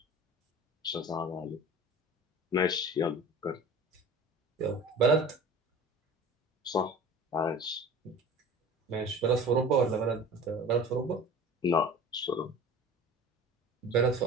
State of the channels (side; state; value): both; normal; correlation 0.40